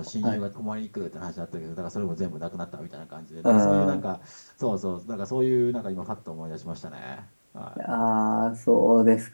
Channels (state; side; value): inverted; both; correlation -1.00